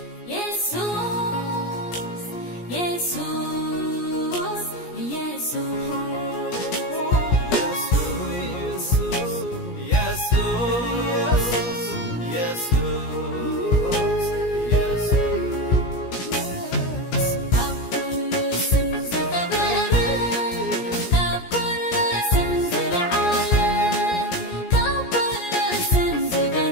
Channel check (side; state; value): right; late; 17 ms